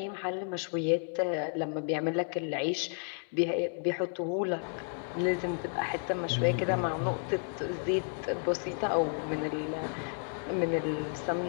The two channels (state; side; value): silent; right; 56 dB below the other